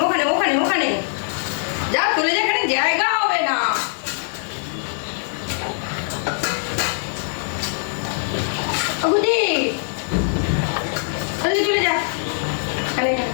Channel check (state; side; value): silent; right; 64 dB below the other